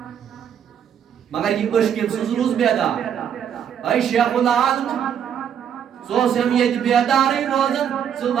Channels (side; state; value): left; quieter; 8.7 dB